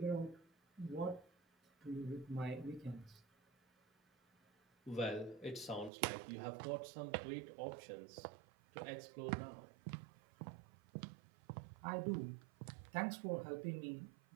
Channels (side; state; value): left; drops out; at 5.9 s